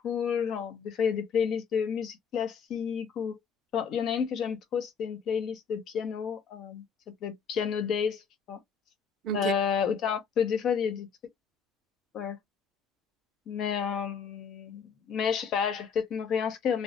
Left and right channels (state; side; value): quieter; right; 6.5 dB